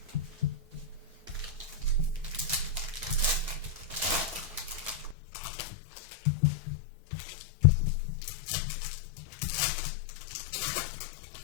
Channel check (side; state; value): right; drops out; at 5.2 s